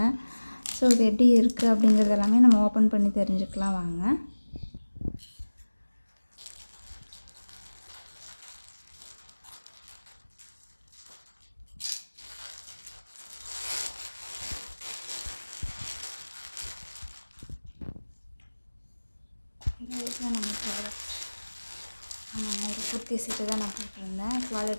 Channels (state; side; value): inverted; both; correlation -1.00